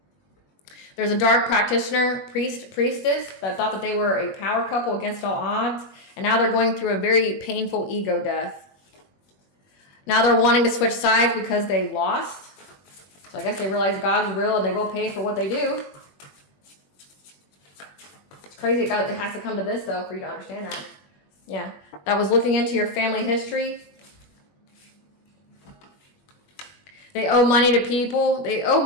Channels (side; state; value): right; late; 21 ms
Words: there's a dark practitioner, priestess, that thought that they were a power couple against all odds. And now they're going through a very painful ego death. Now they're wanting to switch sides because they lost. So I guess they realize God is real and they will pay for what they do. It's crazy it has to come to this, though, for you to understand that. Yeah. That was looking into your family history. They owe money to people. They owe